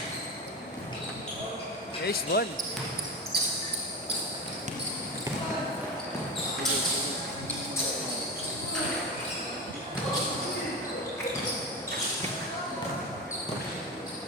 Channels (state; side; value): normal; both; correlation 0.23